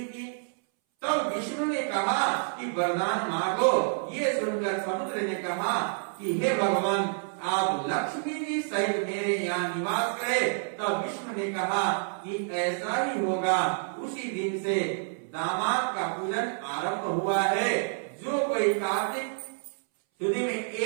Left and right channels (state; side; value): silent; left; 59 dB below the other